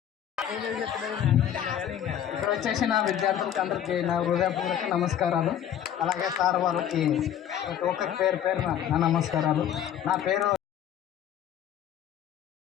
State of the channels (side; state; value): right; quieter; 10.0 dB